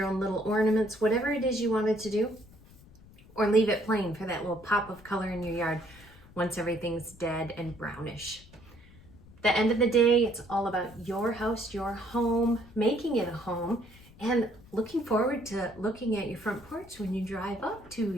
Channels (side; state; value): left; noise; rumble, 23 dB below the sound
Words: own little ornaments, whatever it is you wanted to do, or leave it plain for that little pop of color in your yard once everything's dead and brownish. The end of the day, it's all about your house, your home, making it a home, and looking forward to looking at your front porch when you drive up to